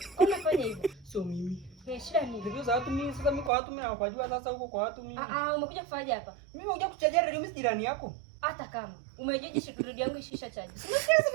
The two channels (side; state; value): left; drops out; at 3.5 s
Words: Kwa nini unafanya hivyo? Sio mimi. Shida ni Radio za watu mimi sasa mimi kwa watu mimi nawajua sasa huko kwa watu mimi. Umekuja kufanyaje hapa? Mimi nimekuja kukuchajia radio mimi jirani yako. Hata kama umejeje radio yangu ishisha chaji.